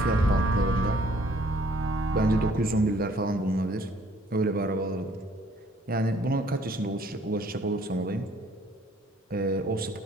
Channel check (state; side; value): normal; both; correlation 0.61